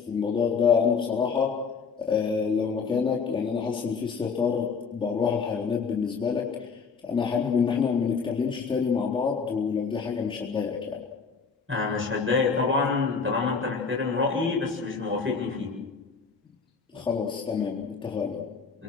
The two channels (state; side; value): quieter; right; 5.4 dB